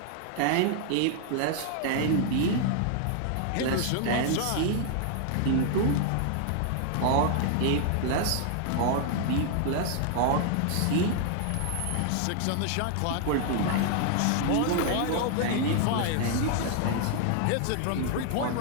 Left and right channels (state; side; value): different; both; correlation 0.00